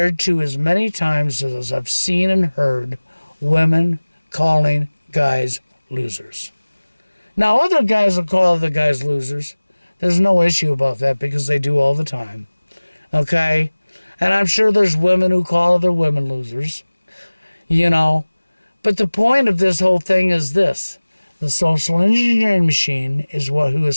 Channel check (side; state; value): both; inverted; correlation -1.00